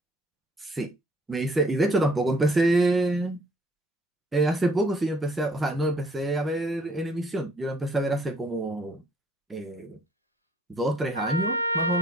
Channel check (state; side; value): normal; both; correlation 0.61